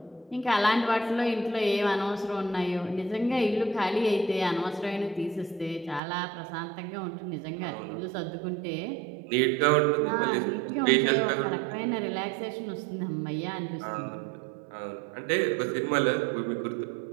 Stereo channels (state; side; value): drops out; left; at 6.0 s